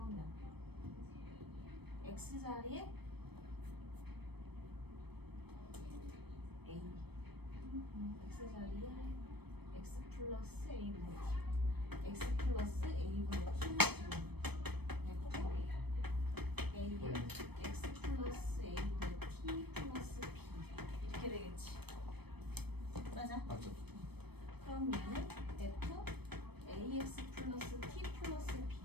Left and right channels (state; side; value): late; left; 0.97 ms